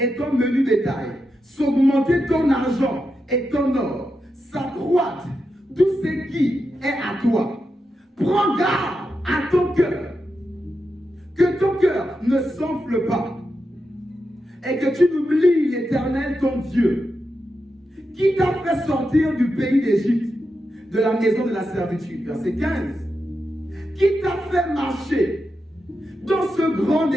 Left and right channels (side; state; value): both; normal; correlation 0.87